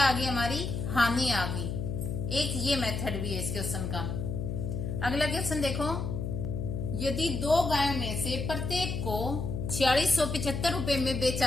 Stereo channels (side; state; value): left; noise; hum, 3 dB below the sound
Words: आ गई हमारी? हानि आ गई। एक ये मेथड भी है इस क्वेश्चन का। अगला क्वेश्चन देखो, यदि दो गायों में से प्रत्येक को 4675 रुपए में